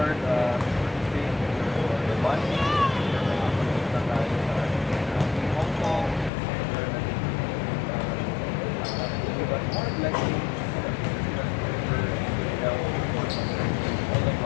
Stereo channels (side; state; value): right; drops out; at 6.3 s